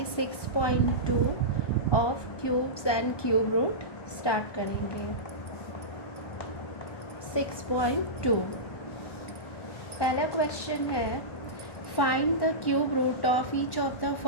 6.2 of cubes and cube root start करेंगे। 6.2 पहला क्वेश्चन है, find the cube root of each of the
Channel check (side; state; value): right; late; 1.2 ms